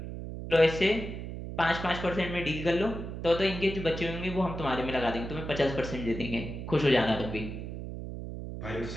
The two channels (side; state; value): right; noise; hum, 7 dB below the sound